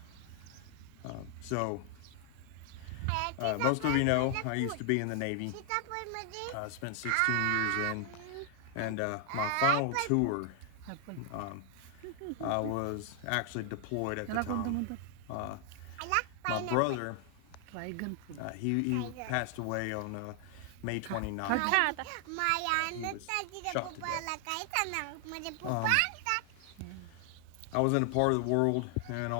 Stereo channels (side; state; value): both; different; correlation 0.00